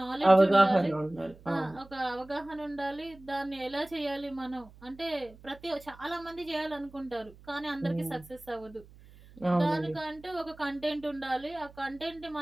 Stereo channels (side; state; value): right; noise; hum, 22 dB below the sound